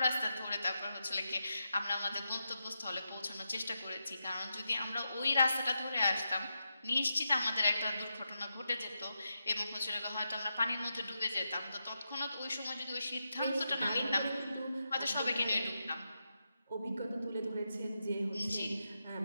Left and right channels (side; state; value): both; inverted; correlation -0.87